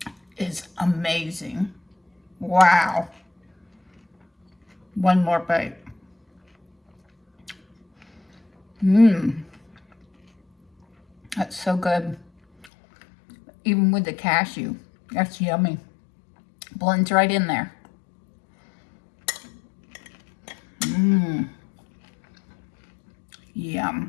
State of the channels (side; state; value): right; drops out; at 12.7 s